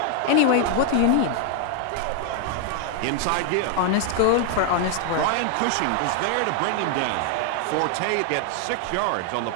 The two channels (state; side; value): different; both; correlation 0.00